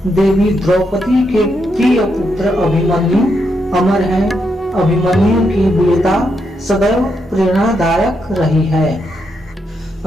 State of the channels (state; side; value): normal; both; correlation 0.81